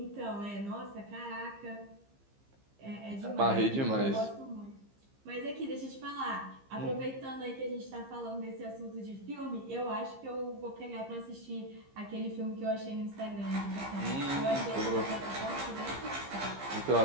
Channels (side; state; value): left; late; 15 ms